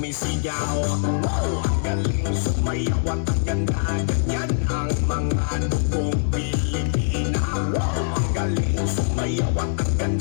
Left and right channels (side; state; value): right; silent; digital silence